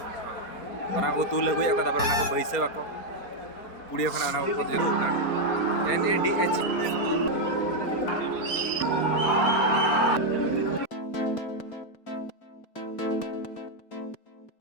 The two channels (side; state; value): right; late; 4.3 ms